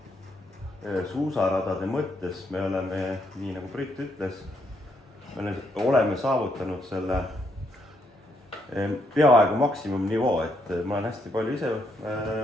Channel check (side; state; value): both; normal; correlation 0.75